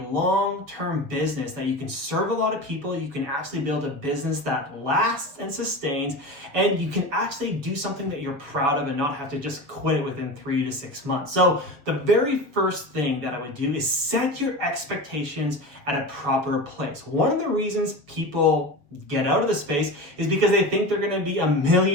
business, that you can serve a lot of people, you can actually build a business that lasts and sustains, and you can actually do something that you're proud of and not have to just quit it within 3 to 6 months. So the very first thing that I would do is set your expectations at a proper place. One of the reasons people get out of the space is because they think they're going to be a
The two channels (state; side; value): late; left; 7.1 ms